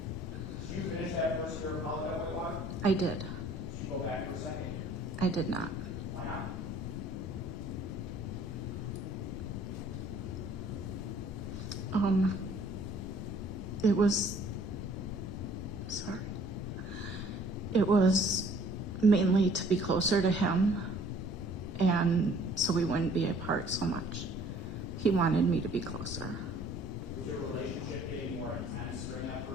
I did. Did you go back for a second year? I did not. Why not? It was, sorry. It was mainly to be closer to him, and so we wouldn't be apart so much. He wanted me to be closer. Was your relationship getting more intense during that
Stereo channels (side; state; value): both; normal; correlation 0.56